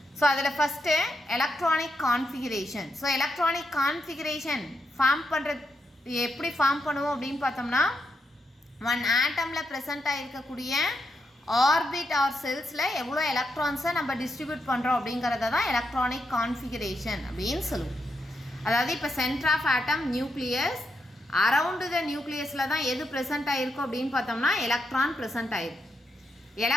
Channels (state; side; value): normal; both; correlation 0.82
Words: ஸோ அதில் first electronic configuration. So electronic configuration form பண்ணுறது எப்படி ஃபார்ம் பண்ணுவோம் அப்படின்னு பார்த்தோம்னா, ஒன் ஆட்டமில் ப்ரெசென்ட் ஆகிருக்கக்கூடிய ஆர்பிட் ஆர் செல்ஸில் எவ்வளோ எலக்ட்ரான்ஸை நம்ம டிஸ்ட்ரிபியூட் பண்ணுறோம் அப்படிங்கிறத தான் எலக்ட்ரானிக் கான்ஃபிகரேஷன் அப்படின்னு சொல்லுவோம். அதாவது இப்போ centre of atom nucleus, around the நியூக்ளியஸில் தான் எது ப்ரெசென்ட் ஆகிருக்கும் அப்படின்னு பார்த்தோம்னா எலக்ட்ரான் ப்ரெசென்ட் ஆகிருக்கும்.